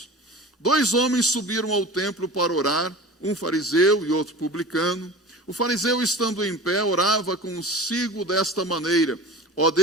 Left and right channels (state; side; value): normal; both; correlation 0.36